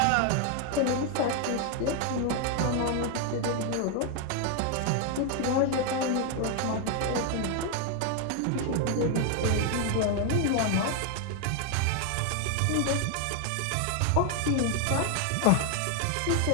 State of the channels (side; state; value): both; different; correlation 0.01